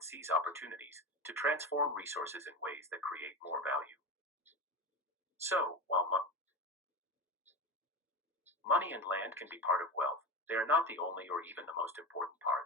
seize opportunities, to transform resources in ways that create more value. So, while money and land can be part of wealth, they are not the only or even the most important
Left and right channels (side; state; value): both; normal; correlation 0.23